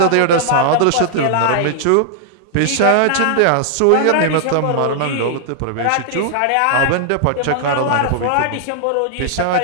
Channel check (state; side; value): different; both; correlation -0.01